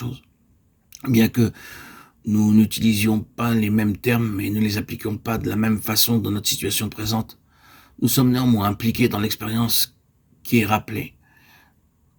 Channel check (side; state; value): both; identical; correlation 1.00